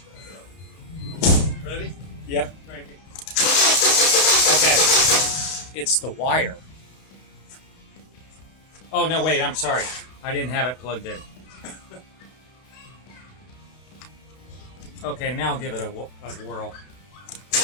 Ready? Yep. Cranking. Okay. It's the wire. Oh, no, wait, I'm sorry. I didn't have it plugged in. Okay, now give it a whirl.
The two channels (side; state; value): right; late; 32 ms